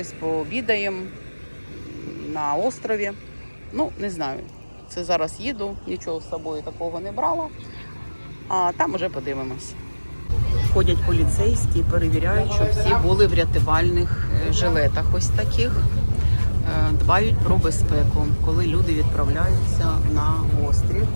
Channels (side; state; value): both; inverted; correlation -1.00